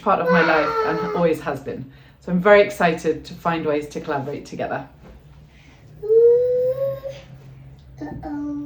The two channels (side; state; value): both; identical; correlation 1.00